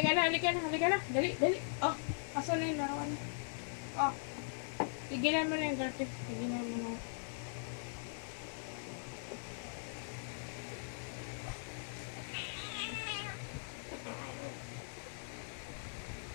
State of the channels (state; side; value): silent; right; 51 dB below the other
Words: na, halika na, halika na. Dali, dali. Oh, asan na yung larawan? Oh, tigilan mo na yung garter. Tigilan mo na.